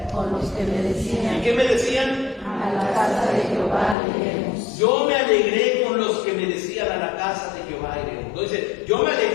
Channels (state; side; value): drops out; right; at 4.0 s